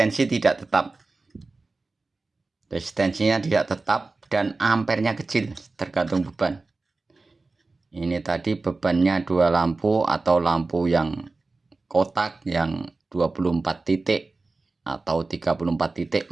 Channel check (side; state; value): left; quieter; 3.6 dB